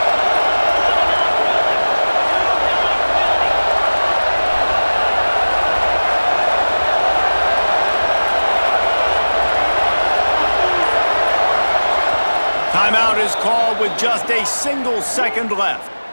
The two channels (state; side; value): inverted; both; correlation -1.00